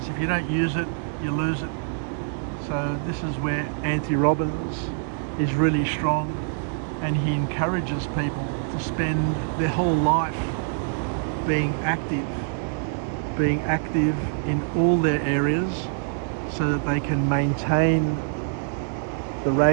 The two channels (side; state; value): left; silent; digital silence